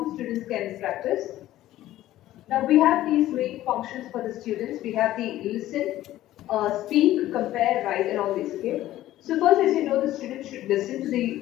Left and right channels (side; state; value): right; quieter; 14.4 dB